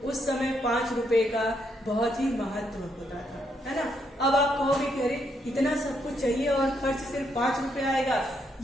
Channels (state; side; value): normal; both; correlation 0.76